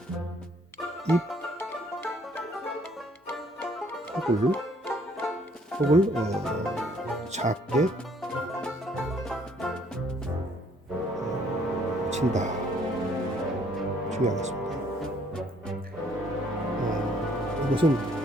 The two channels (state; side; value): normal; both; correlation 0.63